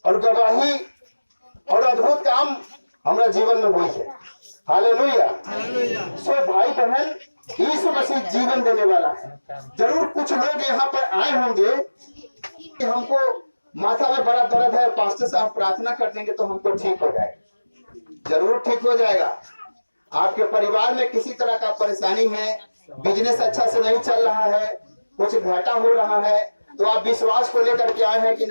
और गवाही और अद्भुत काम हमारा जीवन में हुई है। हालेलुया। सो भाई बहन, यीशु मसीह जीवन देने वाला है। जरूर कुछ लोग यहाँ पर आए होंगे कि हमको माथा में बड़ा दर्द है, पास्टर साहब प्रार्थना कर देंगे तो हमको ठीक हो जाएगा। जरूर ठीक हो जाएगा। आपके परिवार में किसी तरह का परेशानी है, बिजनेस अच्छा से नहीं चल रहा है, कुछ घाटा हो रहा है, तो आप विश्वास को लेकर के आए हैं कि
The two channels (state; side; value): inverted; both; correlation -1.00